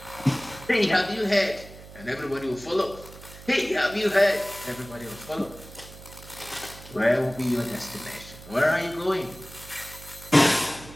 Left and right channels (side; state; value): right; noise; hum, 17 dB below the sound